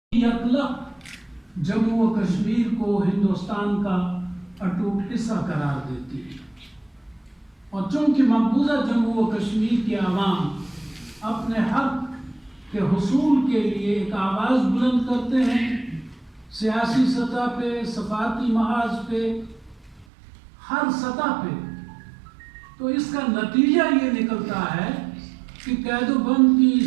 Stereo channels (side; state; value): left; drops out; at 20.1 s